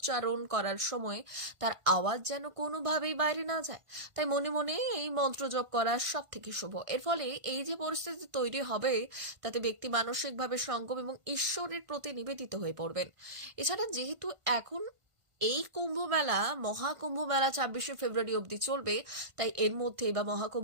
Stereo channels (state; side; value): late; left; 1.5 ms